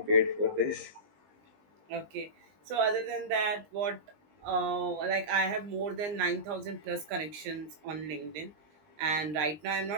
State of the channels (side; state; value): left; late; 20 ms